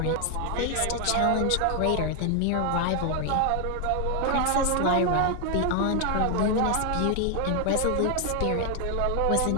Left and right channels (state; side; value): different; both; correlation 0.00